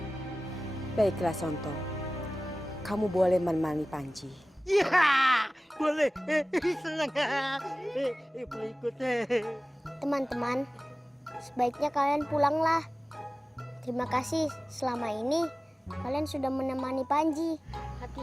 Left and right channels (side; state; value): both; normal; correlation 0.97